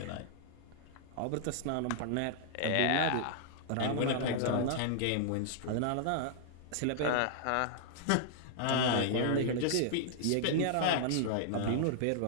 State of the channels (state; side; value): different; both; correlation -0.01